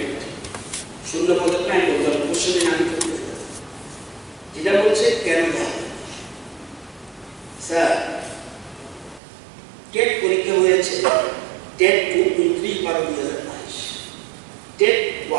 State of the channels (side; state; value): left; drops out; at 9.2 s